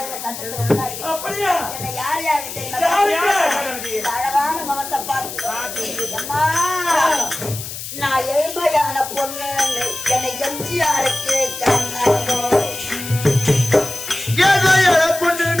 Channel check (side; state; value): left; noise; hiss, 9 dB below the sound